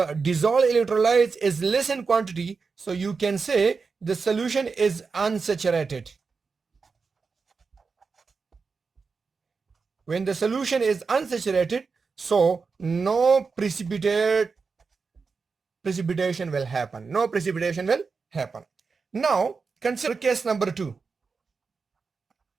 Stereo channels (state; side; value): quieter; left; 4.9 dB